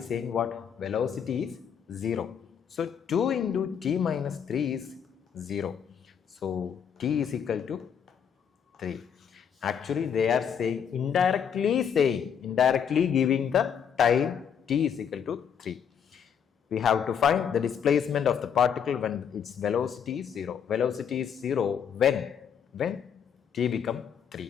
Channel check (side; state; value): right; quieter; 7.8 dB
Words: what? Velocity is 0. So, 2 into t minus 3 is 0. So, t is equal to 3. Actually, they are saying, indirectly giving the time t is equal to 3. We have to find the displacement of the particle when its velocity is 0. Velocity is 0 when t become